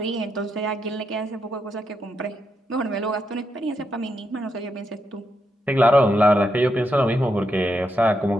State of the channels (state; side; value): normal; both; correlation 0.82